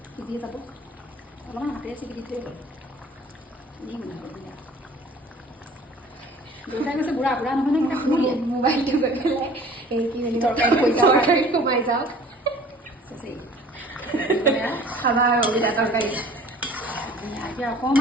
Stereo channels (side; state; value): both; normal; correlation 0.48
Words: সিজিয়ে যাব অলপমান হাতেৰে চিকি দি থৈ হ'ল দেউতাই কৈছে বুঢ়া বুঢ়া নহয় নে শুনিলে মোবাইলটো গৈ পেলাই এই কি বুলি তৰকাৰী সোমাই যাওক খাবা আৰু অবিদা তৰকাৰী এতিয়া